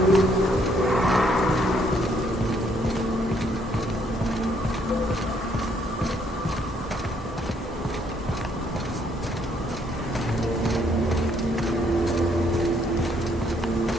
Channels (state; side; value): normal; both; correlation 0.69